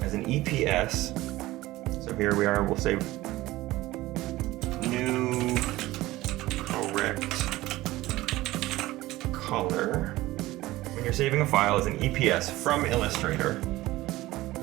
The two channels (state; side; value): quieter; left; 17.7 dB